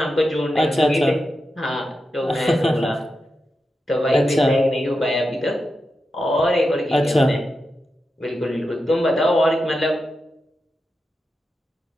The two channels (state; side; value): normal; both; correlation 0.89